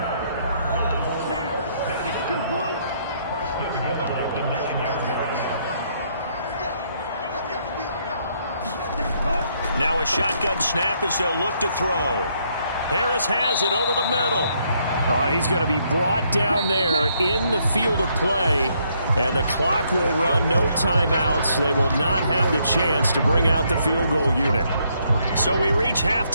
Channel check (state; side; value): inverted; both; correlation -0.72